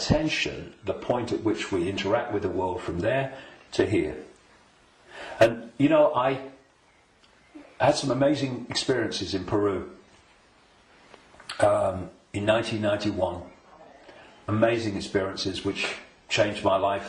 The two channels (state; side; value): identical; both; correlation 1.00